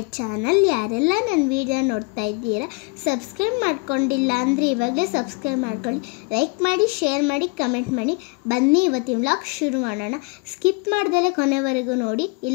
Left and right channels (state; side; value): quieter; right; 30.0 dB